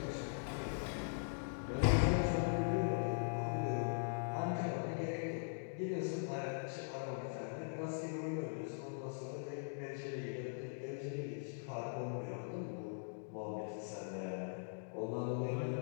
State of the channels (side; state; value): right; silent; digital silence